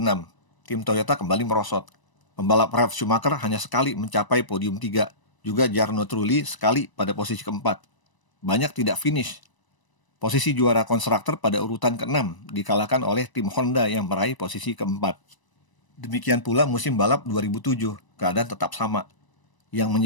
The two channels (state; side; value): late; right; 1.0 ms